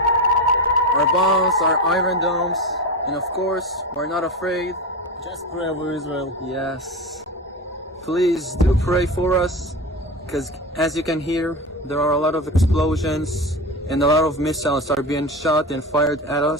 bombs, our iron domes, and of course, we're not afraid. Just pray over Israel. Yes. Please do pray for us, because as you can hear, there are a lot of explosions and a lot of missiles are being shot and fired at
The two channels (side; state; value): both; normal; correlation 0.23